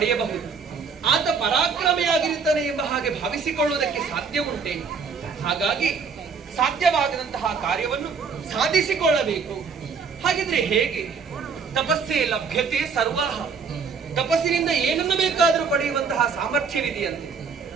ಆತ ಪರಾಕ್ರಮಿಯಾಗಿರುತ್ತಾನೆ ಎಂಬ ಹಾಗೆ ಭಾವಿಸಿಕೊಳ್ಳುವುದಕ್ಕೆ ಸಾಧ್ಯ ಉಂಟೆ. ಹಾಗಾಗಿ ಸಾಧ್ಯವಾಗದಂತಹ ಕಾರ್ಯವನ್ನು ಸಾಧಿಸಿಕೊಳ್ಳಬೇಕು. ಹಾಗಿದ್ರೆ ಹೇಗೆ? ತಪಸ್ಸೇ ಲಭ್ಯತೆ ಸರ್ವಹ. ತಪಸ್ಸಿನಿಂದ ಏನನ್ನು ಬೇಕಾದರೂ ಪಡೆಯುವಂತಹ ಸಾಮರ್ಥ್ಯವಿದೆಯಂತೆ.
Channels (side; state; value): left; quieter; 5.5 dB